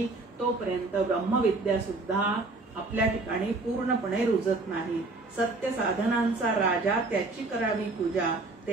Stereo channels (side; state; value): left; quieter; 3.3 dB